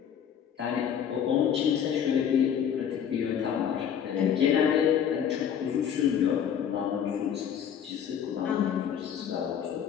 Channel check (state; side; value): quieter; right; 8.6 dB